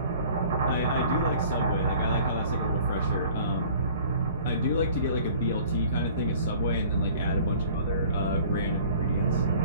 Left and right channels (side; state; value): both; inverted; correlation -0.49